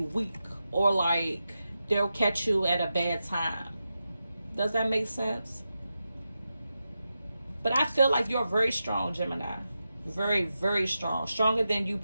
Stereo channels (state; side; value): inverted; both; correlation -0.90